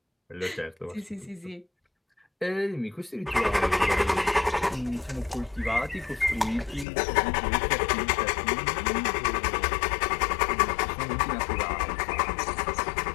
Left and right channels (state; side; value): drops out; right; at 6.9 s